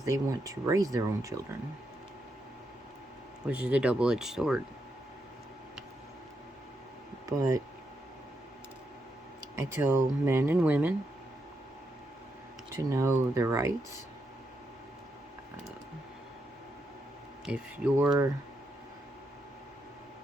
they want to raise their own children, which is a double-edged sword. But I tell men and women to know their rights. If you're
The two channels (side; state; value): both; normal; correlation 0.82